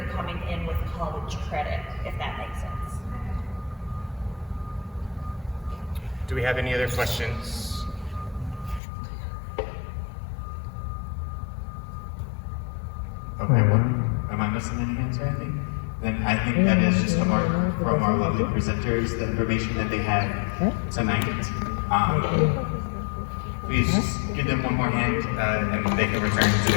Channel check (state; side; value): drops out; right; at 8.8 s